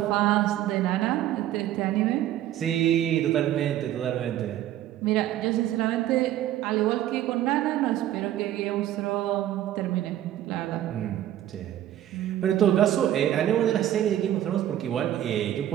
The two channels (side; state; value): left; quieter; 12.5 dB